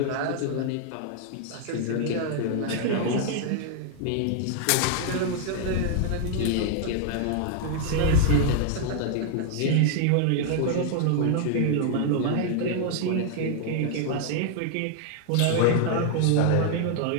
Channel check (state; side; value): different; both; correlation 0.00